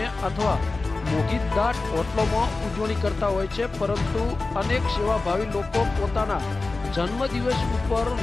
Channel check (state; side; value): quieter; right; 3.5 dB